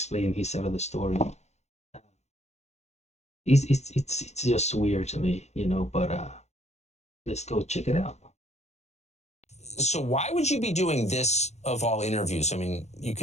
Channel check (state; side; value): late; right; 0.32 ms